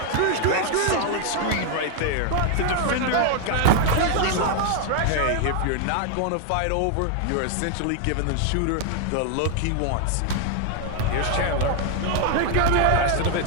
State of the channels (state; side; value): different; both; correlation 0.00